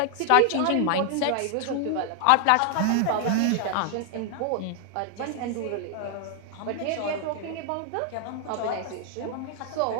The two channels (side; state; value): both; different; correlation 0.00